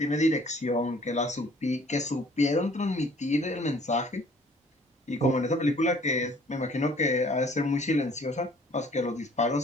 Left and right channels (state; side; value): normal; both; correlation 0.56